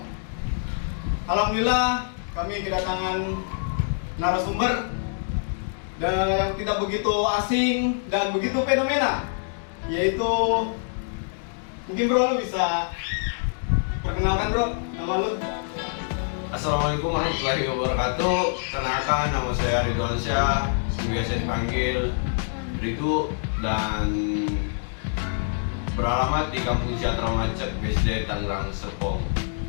Alhamdulillah kami kedatangan narasumber yang tidak begitu asing dan begitu fenomena, yaitu mungkin bro lu bisa perkenalkan bro nama lu. Assalamualaikum warahmatullahi wabarakatuh. Kenalkan, nama saya Ridwan Syah, biasa dipanggil Ridu, dan beralamat di Kampung Sejahtera Macet, BSD Tangerang Serpong.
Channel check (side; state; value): right; silent; 61 dB below the other